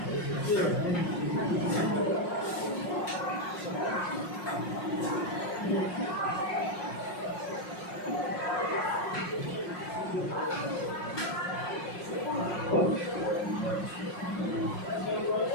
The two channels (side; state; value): right; late; 5.6 ms